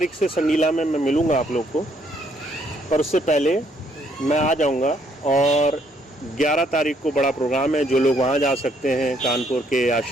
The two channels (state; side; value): normal; both; correlation 0.69